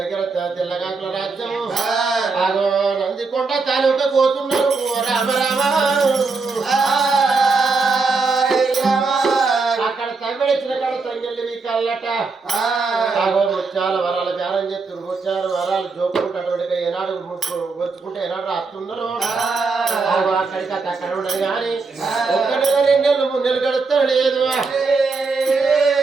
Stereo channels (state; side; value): quieter; left; 4.3 dB